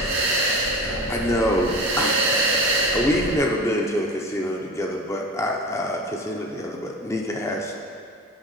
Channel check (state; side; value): normal; both; correlation 0.32